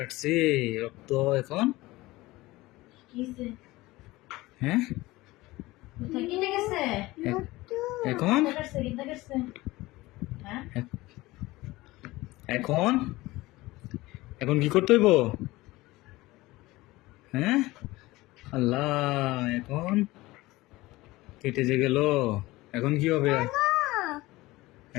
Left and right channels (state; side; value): quieter; right; 19.5 dB